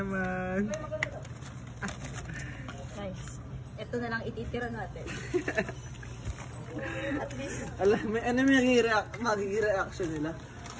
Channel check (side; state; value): both; identical; correlation 1.00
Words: Guys, ito na lang ititira natin. At least, Alam, ano may magiging reaction nila?